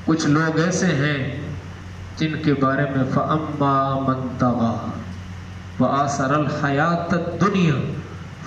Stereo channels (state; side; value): identical; both; correlation 1.00